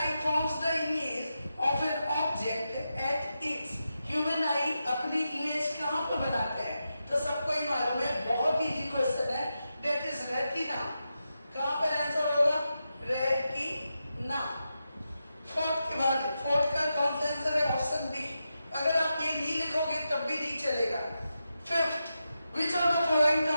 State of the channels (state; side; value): inverted; both; correlation -0.89